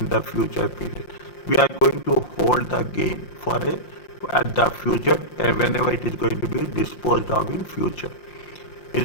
the future period, we are going to hold the gain for at the future whenever it is going to be disposed of in future.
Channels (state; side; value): late; right; 5.7 ms